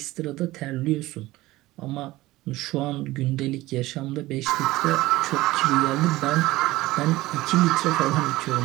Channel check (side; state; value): left; quieter; 18.2 dB